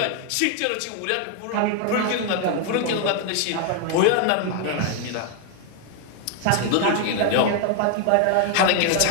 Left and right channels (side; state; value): both; different; correlation 0.00